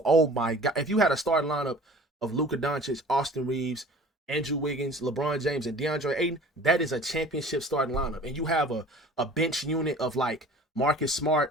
Oh my God. If you had a starting lineup of Luka Doncic, Austin Reeves, Andrew Wiggins, LeBron James, and DeAndre Ayton, that is a championship starting lineup. And you have a bench unit of like Marcus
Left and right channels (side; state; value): both; normal; correlation 0.45